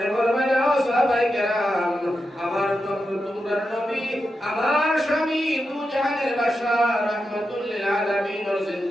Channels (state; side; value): normal; both; correlation 0.88